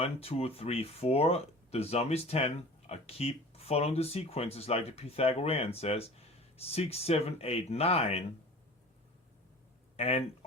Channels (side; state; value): both; normal; correlation 0.41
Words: 2, 3, 4. The sum is 10. I keep following the sequences like the Pythagorean says. 6, 7, 8, 9. And